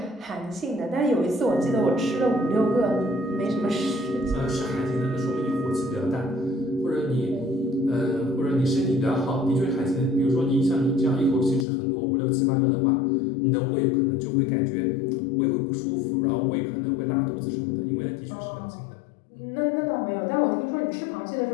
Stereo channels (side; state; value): right; drops out; at 11.7 s